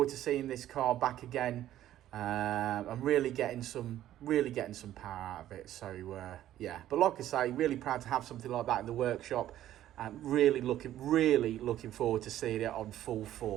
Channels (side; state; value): left; quieter; 12.7 dB